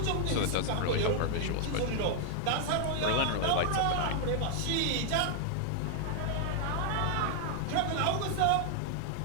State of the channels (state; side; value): different; both; correlation 0.00